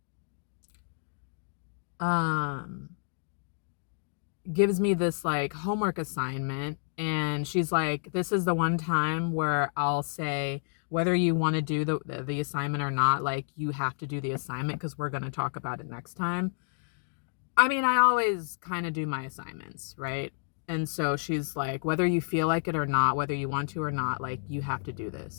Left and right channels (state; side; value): silent; right; digital silence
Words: gives me this like homework assignment, and she's like, this is the one time where I'll say whether you want to do the assignment or not, like you have to do the assignment because we're going to talk about it next time. I mean, I always kind of do my assignments, right? And so she's like, whether you feel like it or not, whether you want to or not, like you have to do